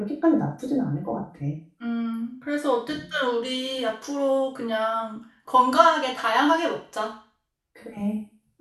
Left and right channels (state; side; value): identical; both; correlation 1.00